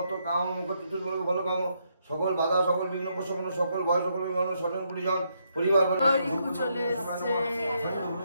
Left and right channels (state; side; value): inverted; both; correlation -0.77